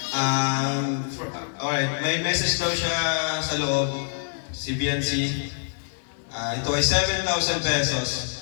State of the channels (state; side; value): silent; right; digital silence